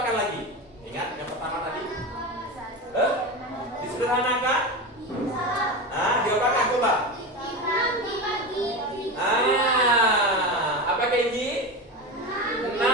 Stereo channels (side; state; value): both; normal; correlation 0.22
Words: lagi? Ingat yang pertama tadi? Disederhanakan? Diapakan coba? Apa Kenji?